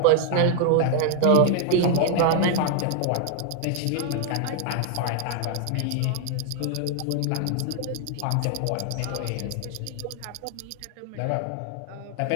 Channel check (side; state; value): both; different; correlation 0.00